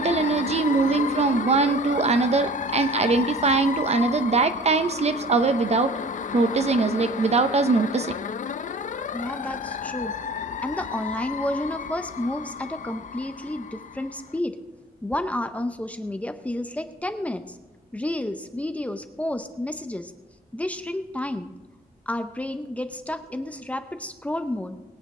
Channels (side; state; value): both; normal; correlation 0.47